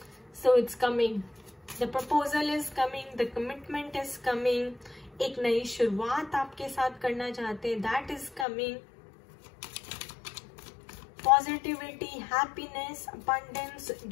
So it's coming, the proposal is coming, the commitment is coming. एक नई शुरुआत आपके साथ करना चाहते हैं, that is coming. Positivity, happiness, abundance,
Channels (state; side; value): drops out; right; at 8.5 s